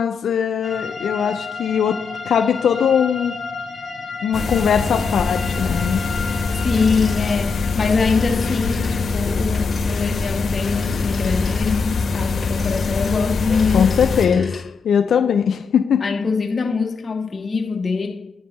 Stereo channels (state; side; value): quieter; right; 5.3 dB